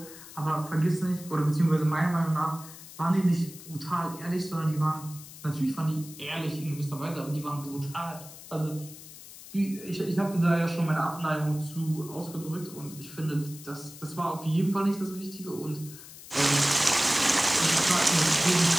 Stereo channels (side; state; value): left; noise; hiss, 16 dB below the sound